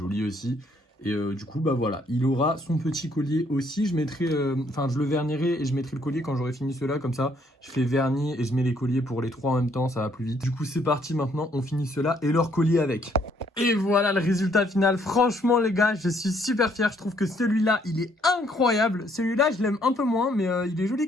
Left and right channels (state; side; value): normal; both; correlation 0.67